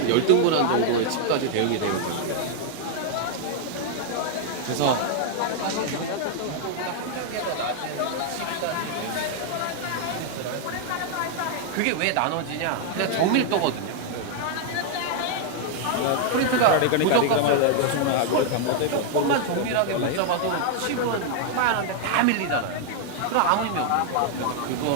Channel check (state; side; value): different; both; correlation 0.00